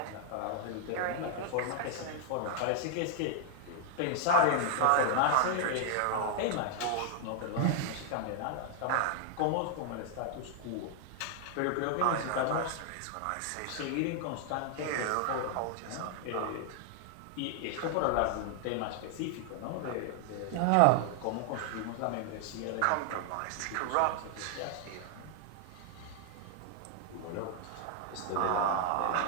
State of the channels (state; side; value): different; both; correlation 0.00